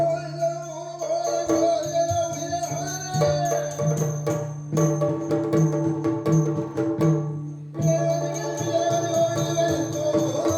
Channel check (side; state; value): both; identical; correlation 1.00